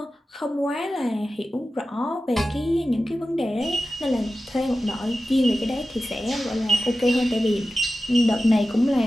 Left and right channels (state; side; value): normal; both; correlation 0.94